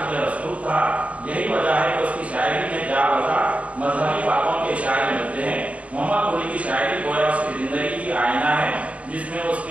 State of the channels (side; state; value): left; late; 0.066 ms